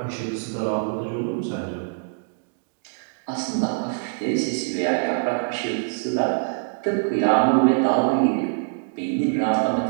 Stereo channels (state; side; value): silent; left; digital silence